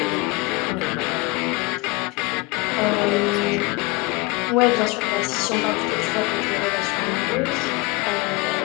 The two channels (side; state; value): right; quieter; 24.1 dB